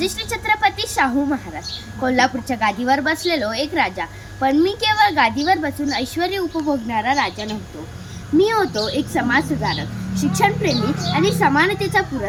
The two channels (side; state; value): both; identical; correlation 1.00